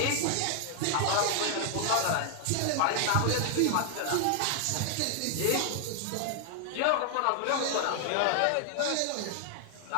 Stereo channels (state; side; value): different; both; correlation 0.00